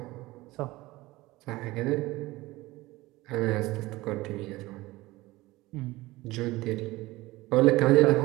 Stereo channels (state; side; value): quieter; left; 19.4 dB